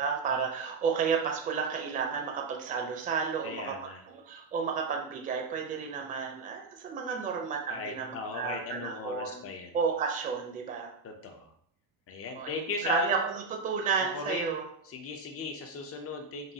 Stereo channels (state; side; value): quieter; left; 4.1 dB